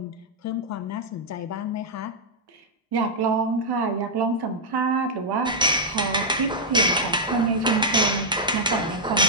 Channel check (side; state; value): both; normal; correlation -0.06